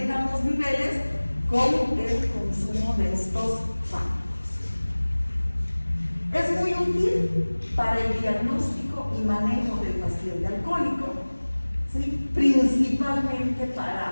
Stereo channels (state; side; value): inverted; both; correlation -1.00